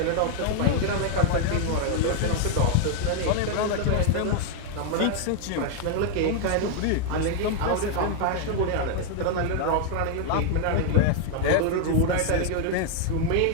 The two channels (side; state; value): both; different; correlation 0.00